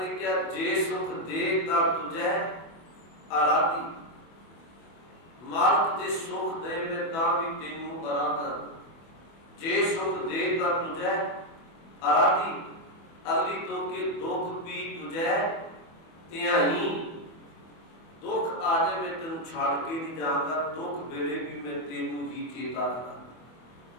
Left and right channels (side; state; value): right; late; 24 ms